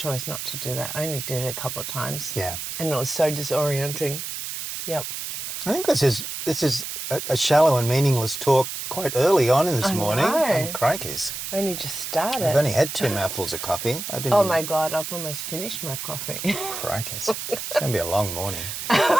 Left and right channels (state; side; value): noise; right; hiss, 6 dB below the sound